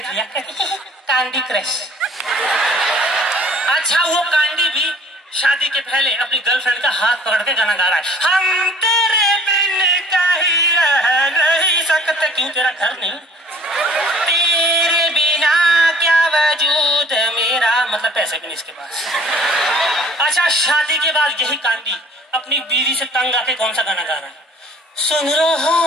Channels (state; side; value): normal; both; correlation 0.52